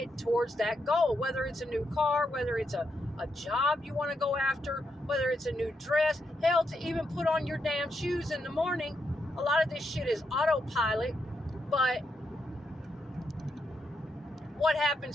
towards that goal. Whether it's a new car, whether it's a job you want to go after, whether it's a new dress, hell, to even put on your damn shoes in the morning. A lot of this shit is autopilot, but what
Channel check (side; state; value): both; normal; correlation 0.81